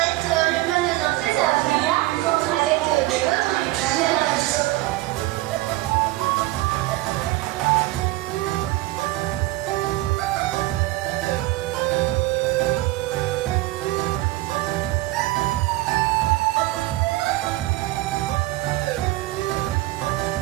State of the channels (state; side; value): quieter; left; 18.5 dB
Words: être le panneau d'entrée, ça va faire là, avec de l'autre.